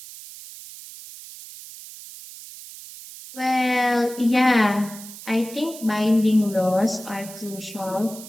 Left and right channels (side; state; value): right; noise; hiss, 15 dB below the sound